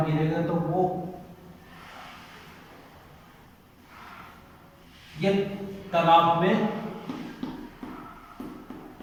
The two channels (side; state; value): both; identical; correlation 1.00